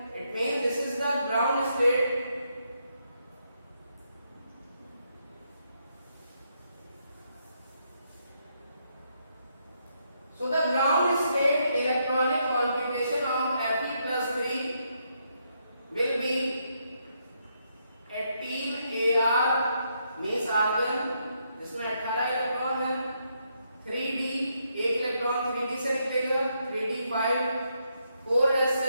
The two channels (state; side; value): inverted; both; correlation -0.78